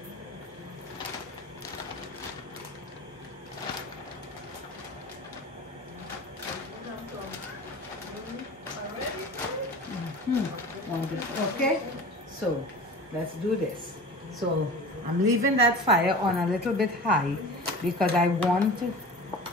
Okay, so let's do this. So I'm leaving that fire on a little bit high because I want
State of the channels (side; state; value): both; normal; correlation 0.36